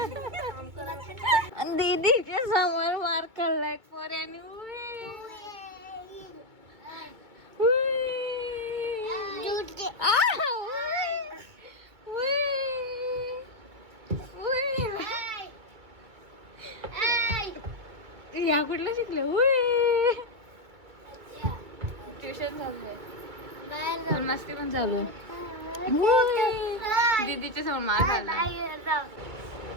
दीदीच्या समोर मार खाल्लाय पोऱ्याने. या कुठलं शिकलं? ट्युशन चालू आहे, मस्ती पण चालू आहे. दीदीच्या समोर मार खाल्ला.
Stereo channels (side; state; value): left; late; 2.3 ms